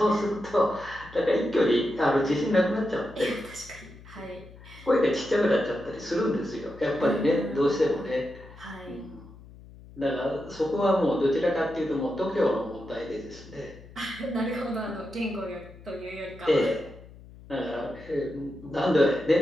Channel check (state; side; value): noise; left; hum, 19 dB below the sound